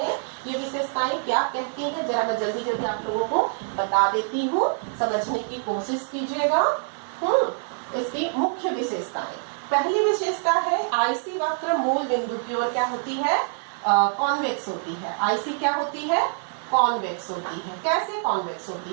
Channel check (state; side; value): silent; left; digital silence